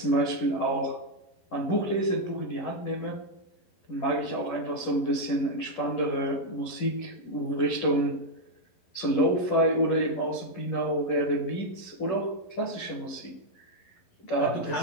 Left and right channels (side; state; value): right; late; 11 ms